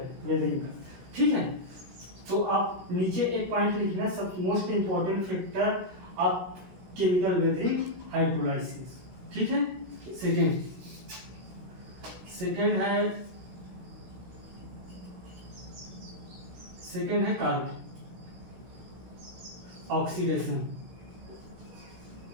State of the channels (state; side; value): late; left; 16 ms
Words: वेदरिंग का, ठीक है। तो आप नीचे एक पॉइंट लिखना, सब most important factor of chemical weathering hydrolysis, ठीक है। सेकेंड है कार्बन ऑक्सीडेशन